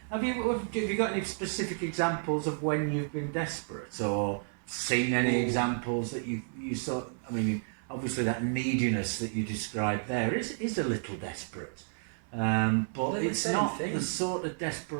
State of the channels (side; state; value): left; silent; 57 dB below the other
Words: Have you got any specific examples of when you've been desperate, or seen any examples that you saw? I mean, obviously that neediness that you described there is a little desperate, but it's not the sort of